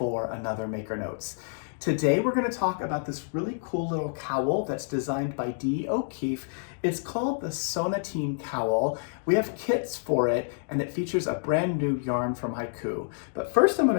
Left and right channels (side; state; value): right; silent; digital silence